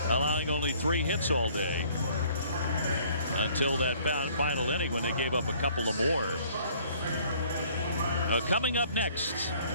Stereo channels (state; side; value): inverted; both; correlation -0.57